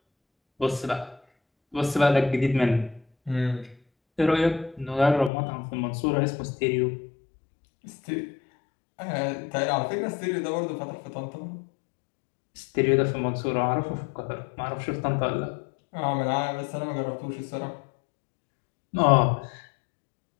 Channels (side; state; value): right; drops out; at 5.3 s